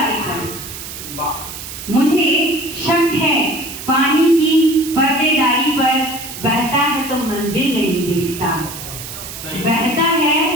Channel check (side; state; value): right; noise; hiss, 10 dB below the sound